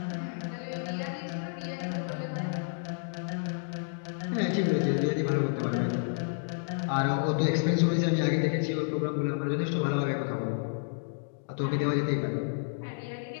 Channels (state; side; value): silent; right; digital silence